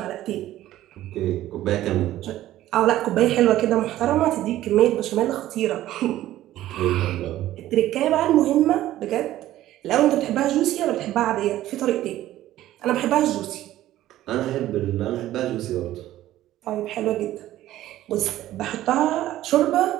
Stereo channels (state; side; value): quieter; left; 14.1 dB